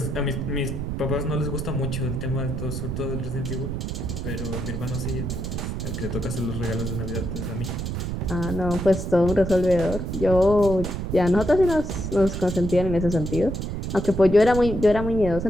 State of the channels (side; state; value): right; noise; rumble, 4 dB below the sound